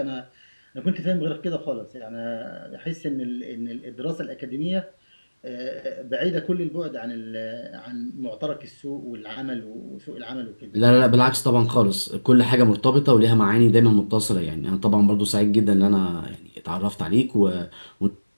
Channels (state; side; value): inverted; both; correlation -1.00